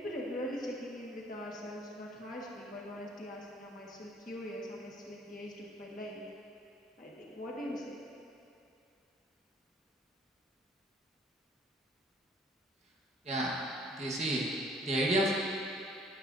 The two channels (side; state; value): both; normal; correlation 0.58